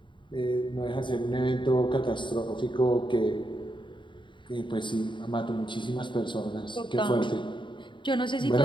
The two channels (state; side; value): late; right; 0.23 ms